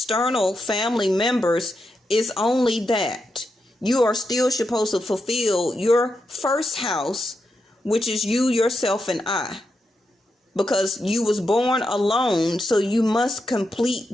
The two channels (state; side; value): normal; both; correlation 0.86